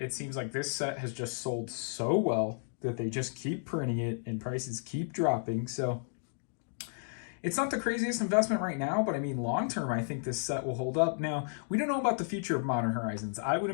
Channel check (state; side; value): silent; right; digital silence